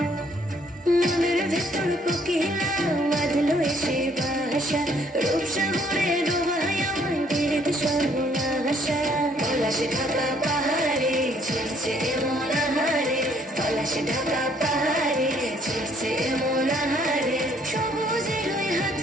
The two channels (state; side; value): normal; both; correlation 0.64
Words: মনের ভেতর কোকিলা বাঁধলো এসে বাসা রূপসাগরে ডোবায় আমায় পেরেতে সর্বনাশা পলাশে ঢাকা পাহাড়ে ছিড়ছে এমন আহারে পলাশে ঢাকা পাহাড়ে ছিড়ছে এমন আহারে সবুজের ওই হাত